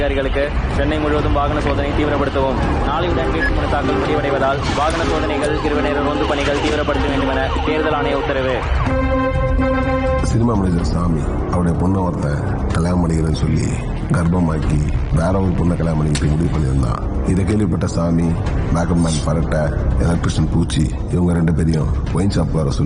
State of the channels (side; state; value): both; identical; correlation 1.00